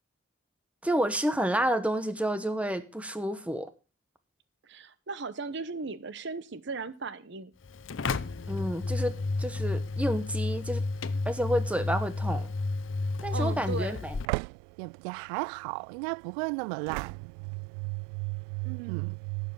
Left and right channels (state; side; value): drops out; left; at 14.2 s